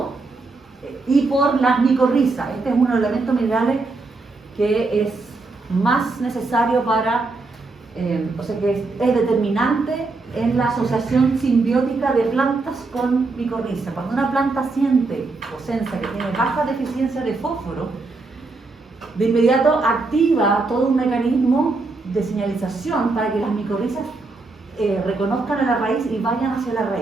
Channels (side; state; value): left; quieter; 3.6 dB